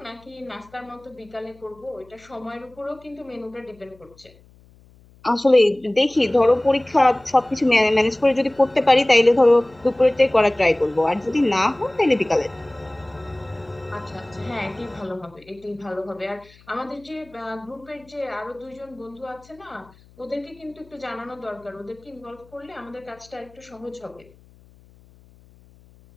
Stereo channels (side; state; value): left; noise; hum, 27 dB below the sound